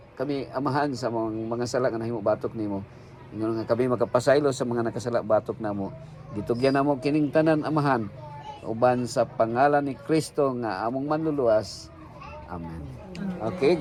kami Amahan sa mga sala nga nahimo batok nimo. Ingon nga kami makapasaylo sa mga nakasala batok namo. Gitugyan namo kining tanan, Amahan, uban sa pangalan ni Kristo nga among manluluwas. Amen. Okay,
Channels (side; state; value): both; identical; correlation 1.00